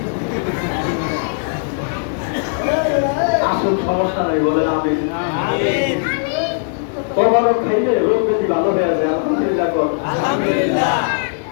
আসুন, সমস্যা নাই, বলেন আমিন। তবারক খাইলে রোগ ব্যাধি ভালো হয়ে যায়। আলহামদুলিল্লাহ কর।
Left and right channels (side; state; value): right; silent; 59 dB below the other